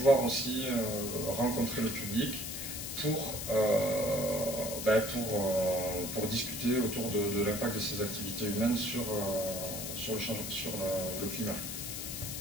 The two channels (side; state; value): left; noise; hiss, 6 dB below the sound